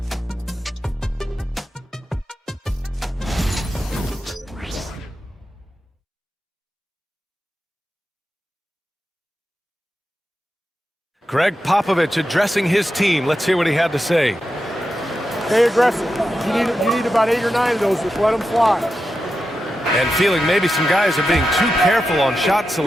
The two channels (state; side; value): normal; both; correlation 0.89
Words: Greg Popovich addressing his team. Let's hear what he had to say. Stay aggressive. You need about 8 or 9 of those. Just let them fly. And feeling maybe some guys are being too careful on shot